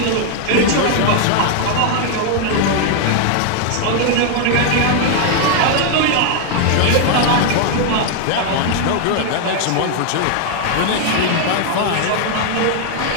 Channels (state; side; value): different; both; correlation 0.00